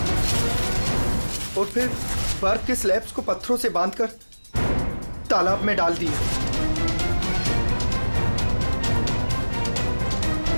और फिर बर्फ के स्लैब्स को पत्थरों से बांधकर तालाब में डाल दिए।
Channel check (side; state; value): both; inverted; correlation -1.00